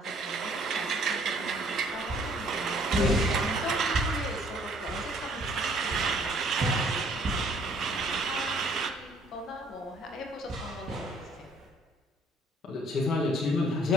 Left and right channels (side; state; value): both; normal; correlation 0.60